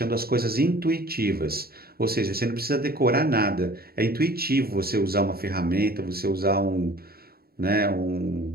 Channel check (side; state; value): left; late; 0.45 ms